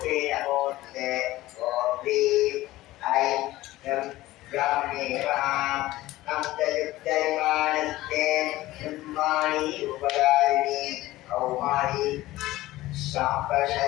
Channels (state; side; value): quieter; right; 17.0 dB